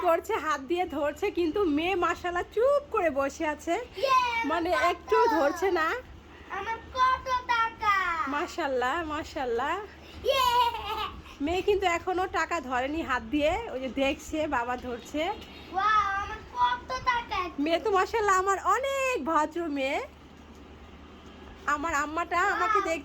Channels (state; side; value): identical; both; correlation 1.00